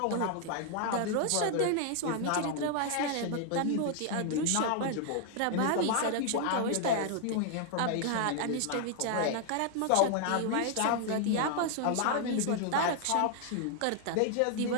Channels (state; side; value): different; both; correlation 0.00